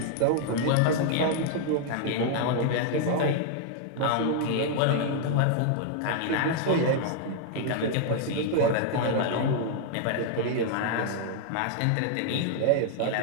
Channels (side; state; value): both; different; correlation 0.00